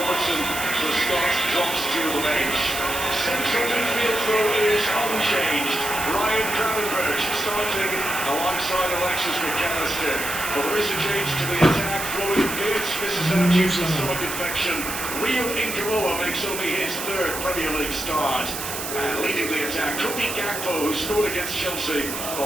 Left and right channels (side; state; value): right; noise; hiss, 6 dB below the sound